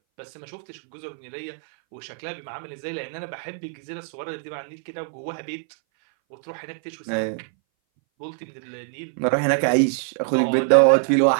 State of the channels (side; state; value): left; silent; 60 dB below the other